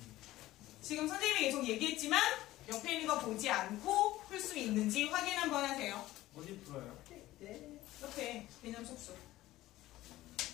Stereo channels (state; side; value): quieter; right; 16.1 dB